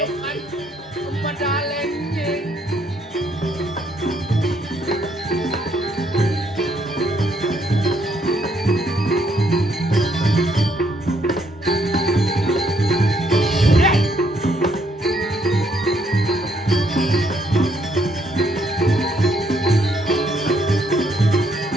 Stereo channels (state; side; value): normal; both; correlation 0.71